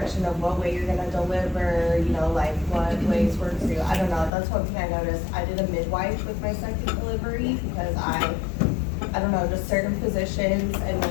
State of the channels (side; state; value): right; drops out; at 4.3 s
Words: of what way you're gonna deliver, you know, like, like what ways work for you. I don't know, that's one thing I noticed. I did a midwife with my second delivery because I don't know, just certain positions and